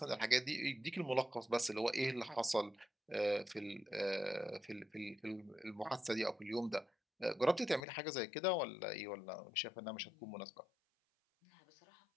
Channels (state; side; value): drops out; right; at 7.9 s